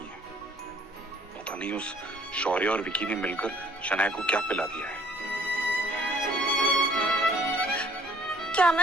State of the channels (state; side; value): normal; both; correlation 0.58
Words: है। पता नहीं उस शौर्य और विकी ने मिलकर शनाया को क्या पिला दिया है। क्या